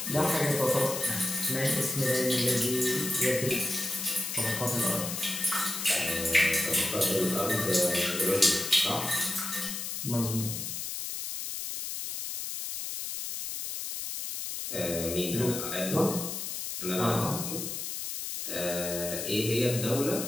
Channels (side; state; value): left; noise; hiss, 5 dB below the sound